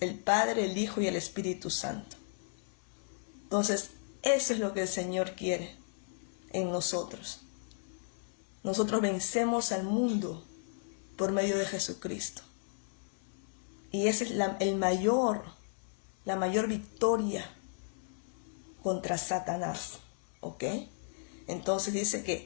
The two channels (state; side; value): silent; right; 55 dB below the other